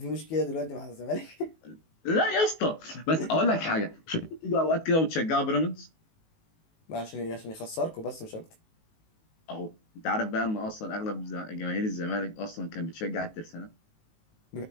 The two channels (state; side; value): late; right; 19 ms